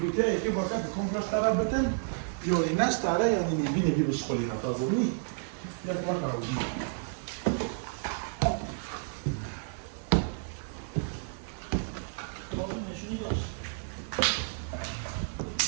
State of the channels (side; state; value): left; silent; digital silence